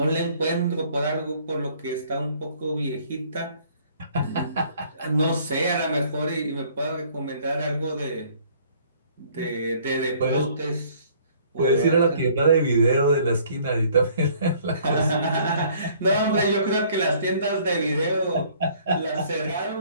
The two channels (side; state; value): both; inverted; correlation -0.58